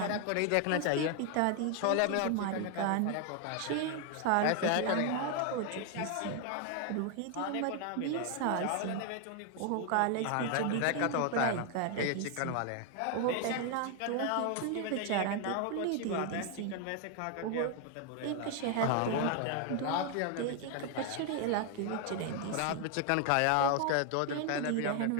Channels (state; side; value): different; both; correlation 0.00